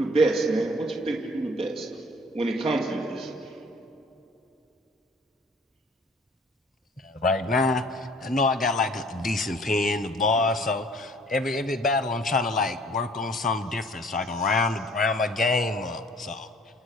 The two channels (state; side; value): normal; both; correlation 0.53